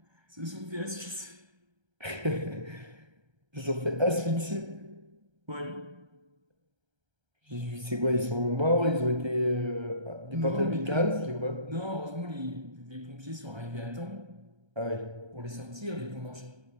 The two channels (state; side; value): late; left; 1.3 ms